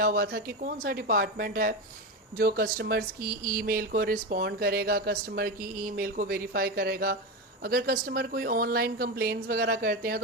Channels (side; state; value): both; normal; correlation 0.17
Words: हुआ था कि कौन सा डिपार्टमेंट है जो कस्टमर्स की ईमेल को रिस्पॉन्ड करेगा, कस्टमर की ईमेल को वेरीफाई करेगा। अगर कस्टमर कोई ऑनलाइन कंप्लेंट्स वगैरह करते हैं